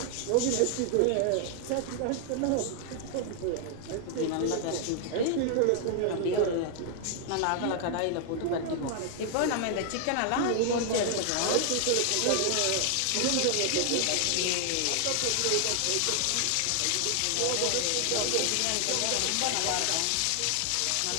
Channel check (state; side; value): different; both; correlation 0.00